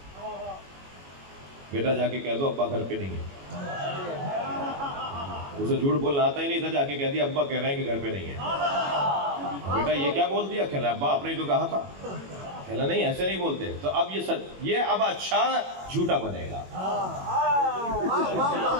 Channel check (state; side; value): late; left; 21 ms